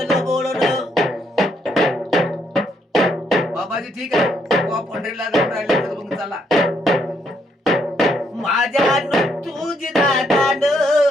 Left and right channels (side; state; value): both; normal; correlation 0.73